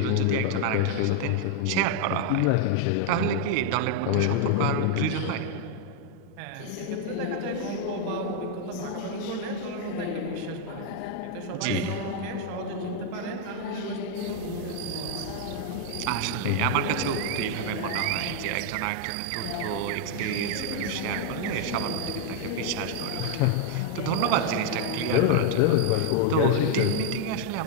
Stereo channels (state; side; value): different; both; correlation 0.00